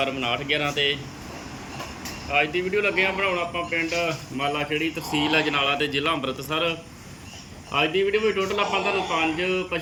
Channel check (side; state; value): both; identical; correlation 1.00